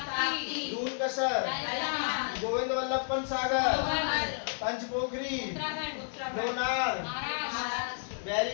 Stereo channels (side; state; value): right; silent; digital silence